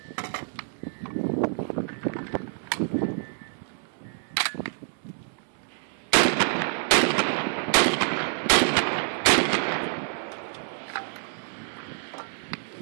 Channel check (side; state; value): left; silent; digital silence